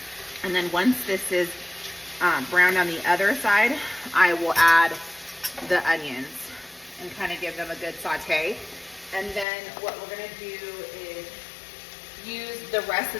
And then once this is browned on the other side, I will add the onions and kind of give them a good saute. And then what we're gonna do is use the rest of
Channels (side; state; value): right; drops out; at 9.5 s